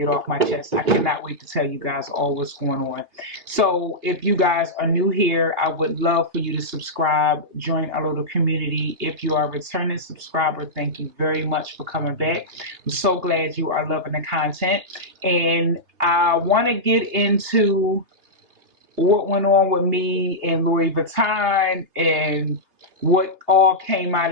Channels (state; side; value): late; left; 3.0 ms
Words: off my chest. I cannot wait to tell you guys all what's going on. So if you guys are new here, I would love for you to subscribe, join our little community. If you are a returning subscriber, thank you very much for coming back. I'm so glad you are loving the content. And I want to get into what went on with me and Louis Vuitton and what all came